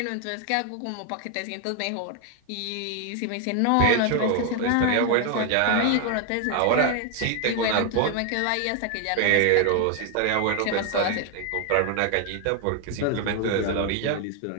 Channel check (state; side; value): different; both; correlation 0.01